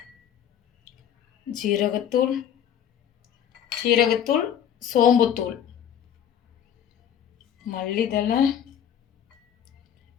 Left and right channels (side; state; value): right; quieter; 9.4 dB